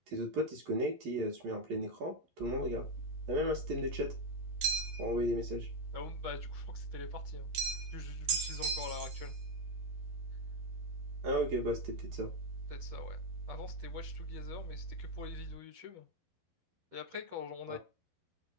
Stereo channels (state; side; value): late; left; 12 ms